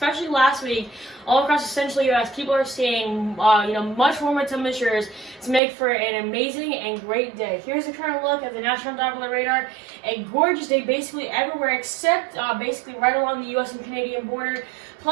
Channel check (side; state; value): left; drops out; at 5.6 s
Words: last week, all across the central U.S. People are seeing, much warmer temperatures to make for an amazing and great day. Here's a current look at the National Doppler Radar. A gorgeous day basically everywhere except basically right along the U.S. and Canadian border.